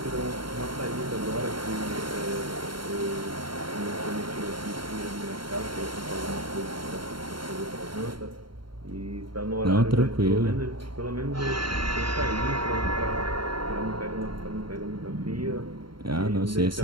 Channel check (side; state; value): left; late; 0.73 ms